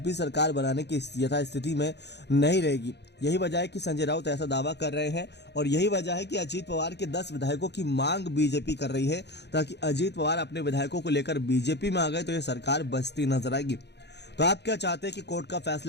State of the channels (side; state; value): right; late; 0.50 ms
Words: सरकार बनाने की यथास्थिति में नहीं रहेगी। यही वजह है कि संजय राउत ऐसा दावा कर रहे हैं और यही वजह है कि अजीत पवार के 10 विधायकों की मांग बीजेपी कर रही है, ताकि अजीत पवार अपने विधायकों को लेकर बीजेपी में आ गए तो यह सरकार बचती नजर आएगी। तो आप क्या चाहते हैं कि कोर्ट का